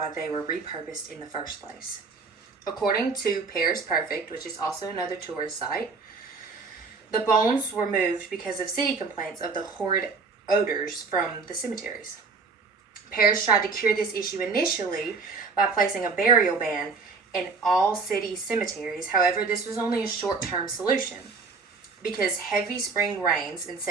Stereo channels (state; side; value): quieter; left; 4.5 dB